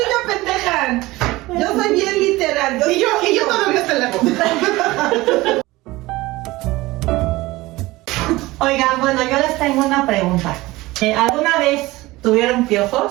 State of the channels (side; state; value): left; quieter; 19.6 dB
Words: me pendejan. Yo soy bien literal. Y yo todavía te la hago. Oigan, bueno, yo les tengo una pregunta. ¿Alguna vez tuvieron